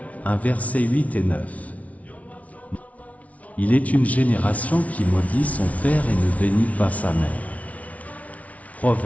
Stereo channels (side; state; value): right; late; 0.068 ms